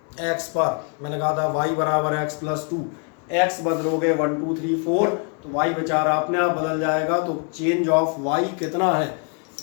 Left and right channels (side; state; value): right; quieter; 38.9 dB